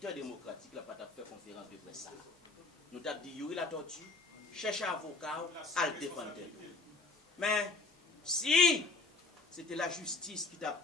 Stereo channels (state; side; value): quieter; right; 3.5 dB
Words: démocratique n'a pas fait conférence de presse. Nous avons dit, Yuri la tortue, cherche un avocat à le défendre. Mais si c'était la justice qui t'a